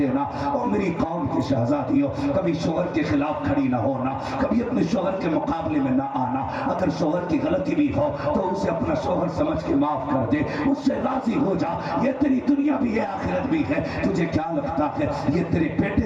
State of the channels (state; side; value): identical; both; correlation 1.00